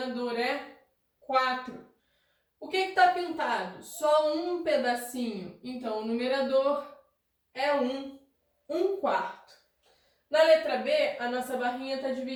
é 4. O que está pintado? Só um pedacinho. Então, o numerador é 1. 1/4. Na letra B, a nossa barrinha está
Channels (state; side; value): identical; both; correlation 1.00